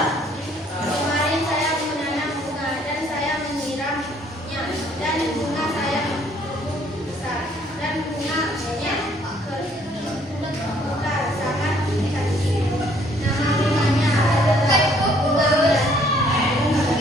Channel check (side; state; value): both; normal; correlation 0.63